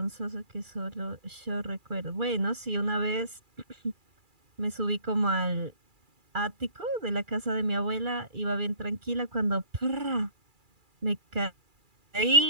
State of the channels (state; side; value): late; left; 2.4 ms